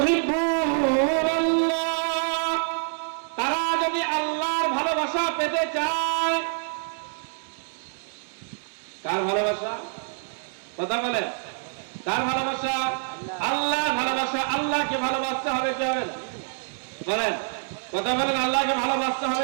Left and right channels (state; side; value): silent; left; digital silence